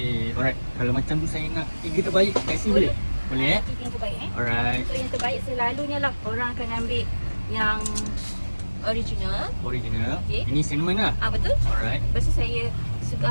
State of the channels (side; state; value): both; inverted; correlation -1.00